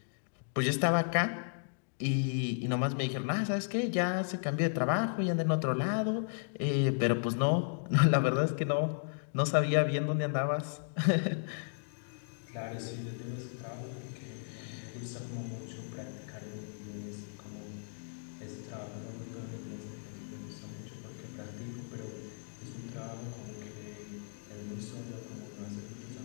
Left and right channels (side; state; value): right; silent; digital silence